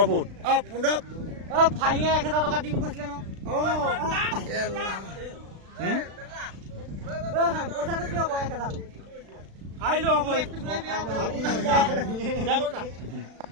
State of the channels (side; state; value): left; late; 36 ms